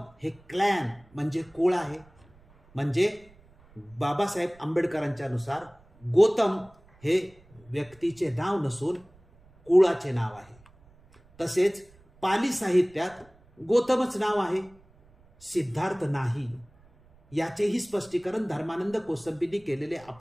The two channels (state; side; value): noise; right; rumble, 28 dB below the sound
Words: हे क्लॅन म्हणजे कुळ आहे. म्हणजे बाबासाहेब आंबेडकरांच्या नुसार गौतम हे व्यक्तीचे नाव नसून कुळाचे नाव आहे. तसेच पाली साहित्यात गौतमच नाव आहे, सिद्धार्थ नाही. याचेही स्पष्टीकरण धर्मानंद कोसंबींनी केलेले